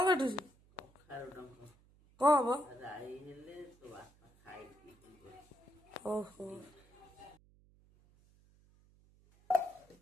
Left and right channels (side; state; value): right; noise; hum, 28 dB below the sound